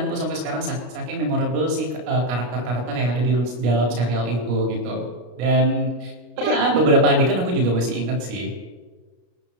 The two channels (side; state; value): left; late; 33 ms